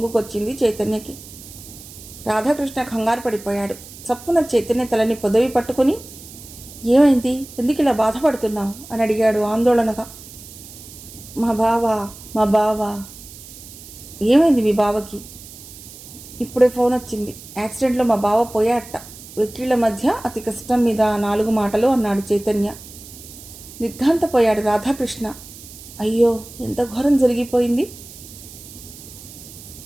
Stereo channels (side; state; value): right; noise; hiss, 17 dB below the sound